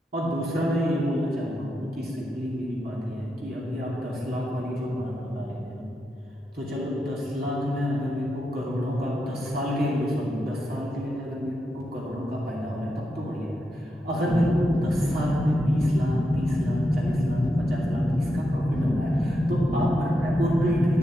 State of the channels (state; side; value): normal; both; correlation 0.85